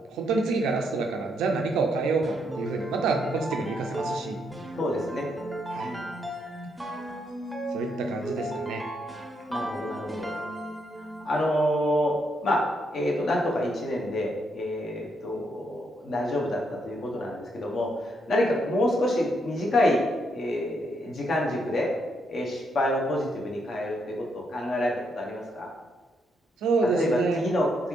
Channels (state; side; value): normal; both; correlation 0.77